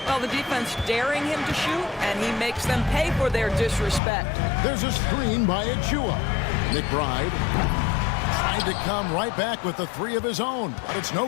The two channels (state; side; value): drops out; right; at 4.0 s